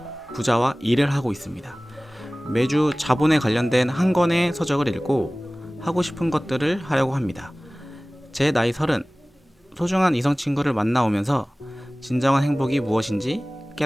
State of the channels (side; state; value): both; normal; correlation 0.98